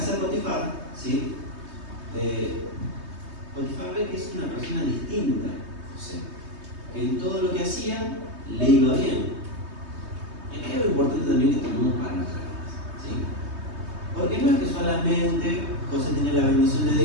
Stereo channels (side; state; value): left; late; 3.2 ms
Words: de Potifar, ¿sí? Potifar ve que es una persona distinta a José, que en todo lo que hacía le iba bien. Y acá hay algo importante también que tenemos para nuestras vidas, ¿sí? Porque no es que solamente José tenía la bendición